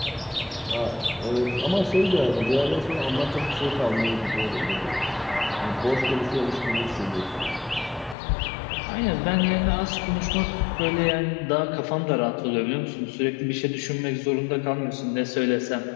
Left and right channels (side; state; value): right; drops out; at 8.2 s